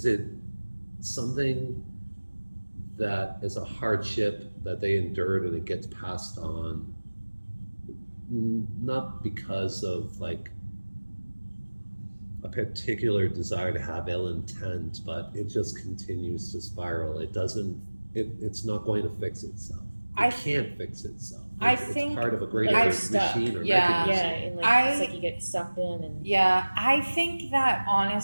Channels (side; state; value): both; inverted; correlation -1.00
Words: it something that is a hardship that they endured and it gets passed on, not because of like a particular desire to have ill intent, but it just continues to spiral. It's not going to fix itself. I can't fix itself. I It's think part of a greater I've machine or Yeah. Yeah, mechanism. and like it's like you get sucked in and Yeah, I think that